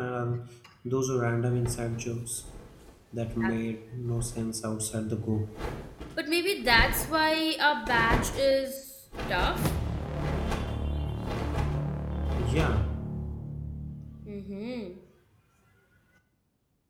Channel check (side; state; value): both; identical; correlation 1.00